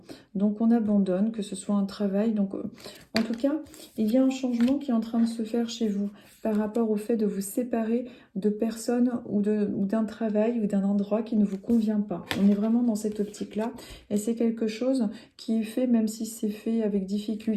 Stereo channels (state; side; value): identical; both; correlation 1.00